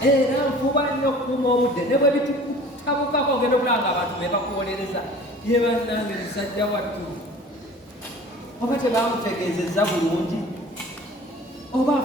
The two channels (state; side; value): normal; both; correlation 0.45